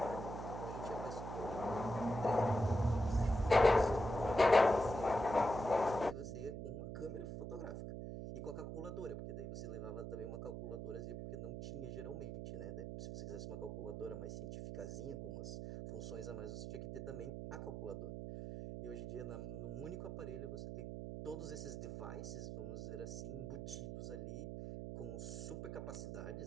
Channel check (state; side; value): noise; right; hum, 6 dB below the sound